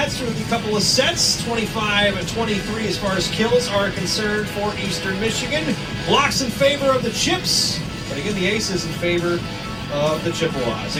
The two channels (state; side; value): identical; both; correlation 1.00